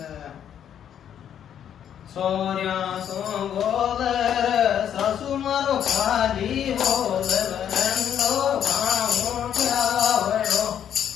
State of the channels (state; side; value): quieter; right; 9.5 dB